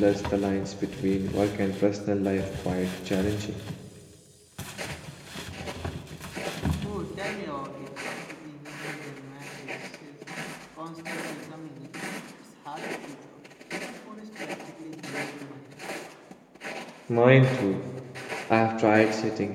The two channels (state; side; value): identical; both; correlation 1.00